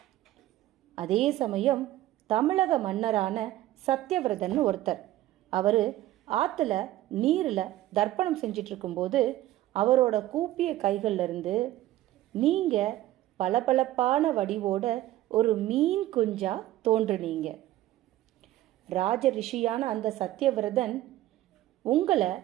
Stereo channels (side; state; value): left; quieter; 14.9 dB